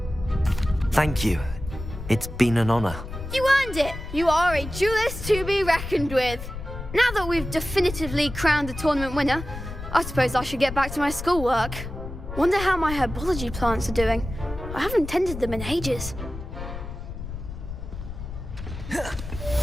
Thank you. It's been an honor. You earned it. You are a duelist to be reckoned with. Now that we've definitively crowned the tournament winner, I suppose I should get back to my schoolwork. Wonder how my herbology plants are doing. I haven't tended them in ages.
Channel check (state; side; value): noise; left; rumble, 9 dB below the sound